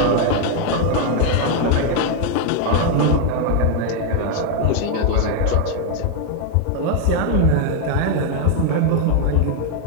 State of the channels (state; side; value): different; both; correlation 0.01